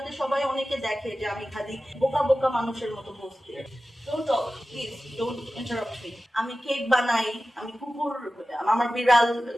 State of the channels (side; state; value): both; normal; correlation 0.95